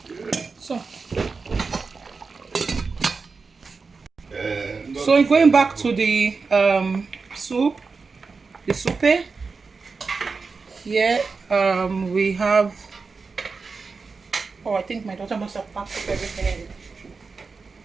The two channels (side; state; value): left; quieter; 4.6 dB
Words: So going back to the soup, the soup here, we have, oh, I think my daughter must have packed up everything in it.